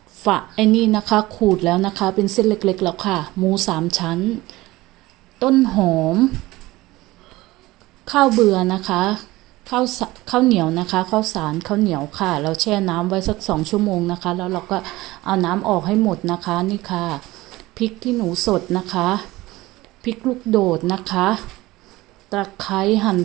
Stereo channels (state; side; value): quieter; left; 19.0 dB